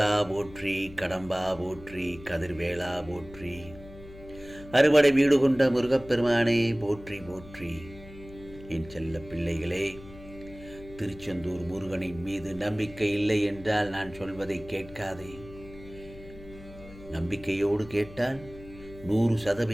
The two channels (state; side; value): noise; left; hum, 18 dB below the sound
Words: போற்றி, கடம்பா போற்றி, கதிர்வேளா போற்றி, அறுபடை வீடு கொண்ட முருகப்பெருமானே போற்றி போற்றி. என் செல்ல பிள்ளைகளே, திருச்செந்தூர் முருகனின் மீது நம்பிக்கை இல்லை என்றால் நான் சொல்வதை கேட்காதே. நம்பிக்கையோடு கேட்டால்